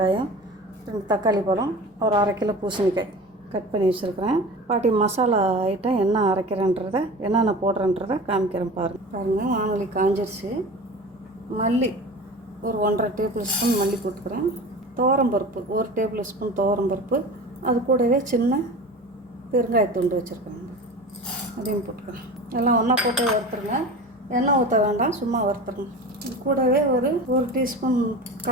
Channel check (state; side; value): normal; both; correlation 0.34